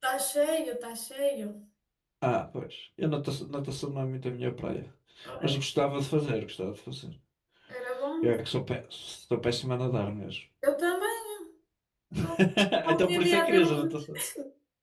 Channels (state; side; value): identical; both; correlation 1.00